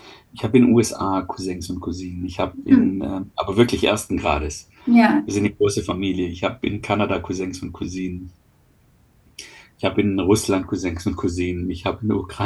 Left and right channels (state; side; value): identical; both; correlation 1.00